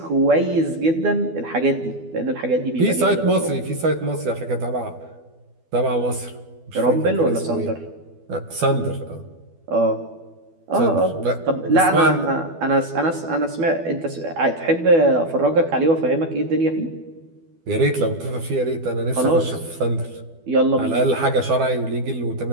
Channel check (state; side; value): late; left; 12 ms